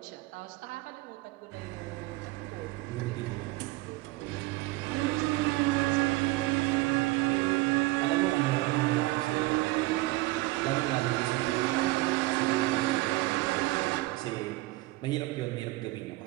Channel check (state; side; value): quieter; left; 20.2 dB